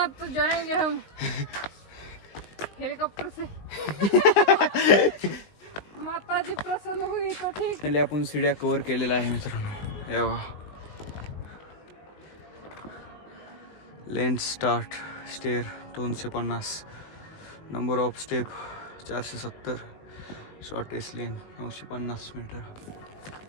तो जाएंगे हम हेलीकॉप्टर से. माता जी प्रसन्न हुई तो ठीक. पहिले आपण सीड्या कव्हर केलेल्या आहे मित्रांनो. हे बघा, length start stair 250, number of step 470, shortest lane 950 metre.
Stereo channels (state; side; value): late; right; 20 ms